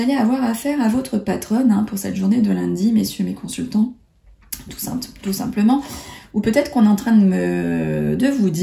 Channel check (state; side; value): identical; both; correlation 1.00